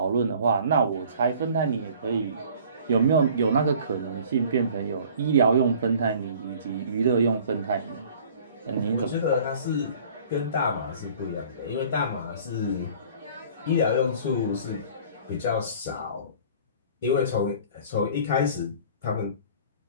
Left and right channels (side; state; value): both; inverted; correlation -0.50